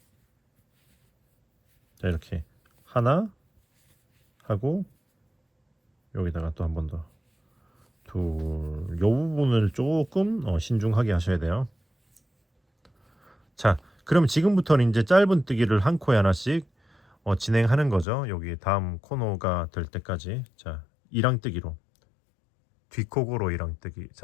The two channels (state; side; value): drops out; right; at 18.1 s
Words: 자 이렇게 하나 하고 여기다가 또 한 번 더 둘, 요 부분을 조금 신중하게 하셔야 돼요. 자 그럼 지금부터는 이제 짧은뜨기를 한 코에 하나씩 진행하는 거죠. 여기 다음 코너가 될 때까지. 자 이랑뜨기로 뒷코고로 이랑뜨기.